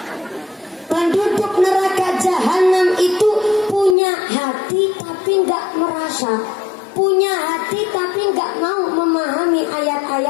Penduduk neraka jahanam itu punya hati tapi nggak merasa. Punya hati tapi nggak mau memahami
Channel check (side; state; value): right; drops out; at 4.0 s